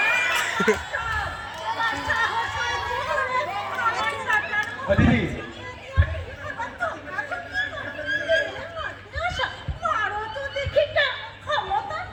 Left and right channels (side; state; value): both; identical; correlation 1.00